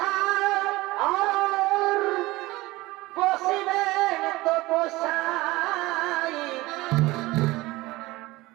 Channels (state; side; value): quieter; left; 19.8 dB